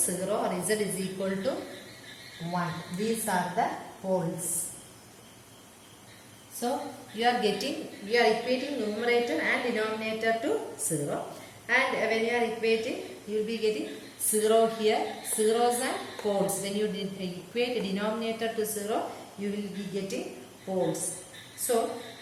or Z is equal to 1. These are the poles. So you are equating numerator and denominator to 0, and when you are equating, you will be getting 0 here, zeros and poles. When you equate the denominator to 0, you will be getting poles. So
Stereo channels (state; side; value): identical; both; correlation 1.00